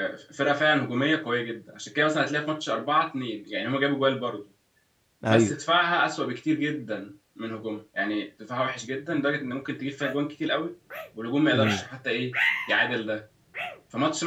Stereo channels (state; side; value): identical; both; correlation 1.00